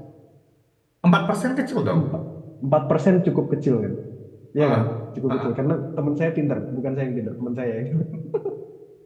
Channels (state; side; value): identical; both; correlation 1.00